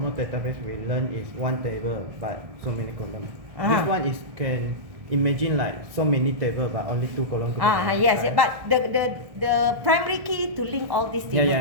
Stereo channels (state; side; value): late; left; 1.6 ms